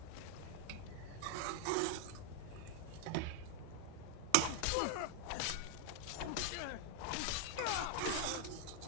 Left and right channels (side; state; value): both; different; correlation 0.00